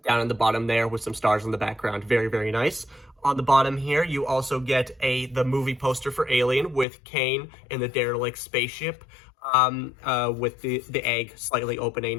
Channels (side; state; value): right; drops out; at 6.9 s